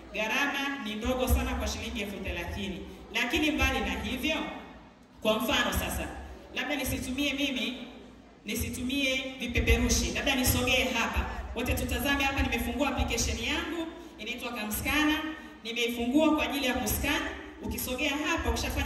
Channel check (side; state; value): both; identical; correlation 1.00